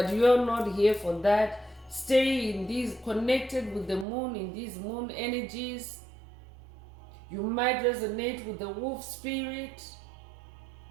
you're not here for that. Stay in these, connected with the moon, in these moon energies. You might resonate with the wolf spirit.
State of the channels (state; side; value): drops out; left; at 4.0 s